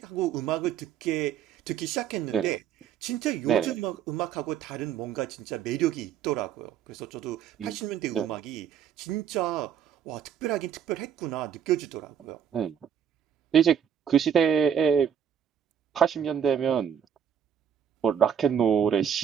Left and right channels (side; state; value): left; quieter; 8.5 dB